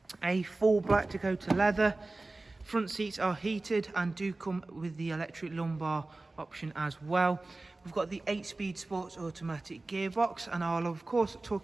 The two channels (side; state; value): left; quieter; 3.1 dB